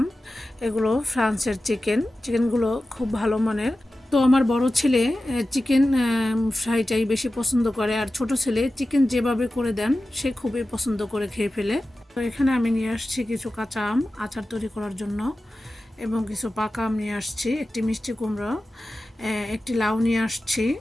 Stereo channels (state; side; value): normal; both; correlation 0.94